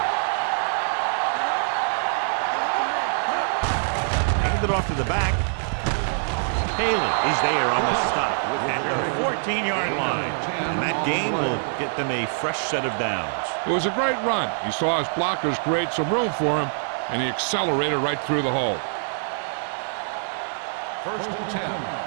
Watch your man. Hand it off to the back. Haley is there on the stop at the 14-yard line. And that game will get them a fresh set of downs. It was a great run. He saw his blockers create some room for him, and he accelerated right through the hole. First and 10.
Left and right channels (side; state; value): left; silent; digital silence